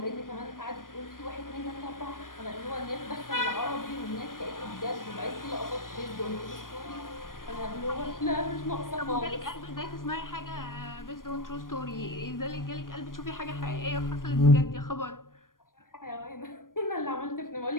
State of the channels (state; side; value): late; right; 0.90 ms